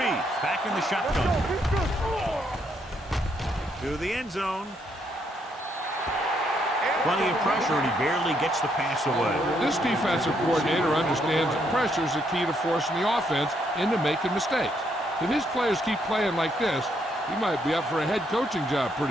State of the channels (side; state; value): both; normal; correlation 0.74